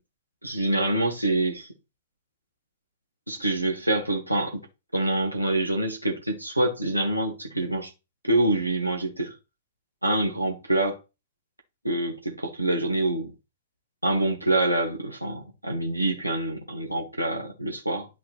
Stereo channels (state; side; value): inverted; both; correlation -0.71